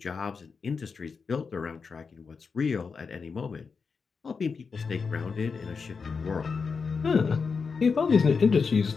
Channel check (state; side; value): quieter; right; 5.2 dB